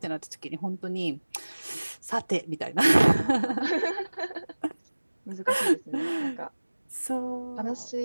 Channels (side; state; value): both; inverted; correlation -1.00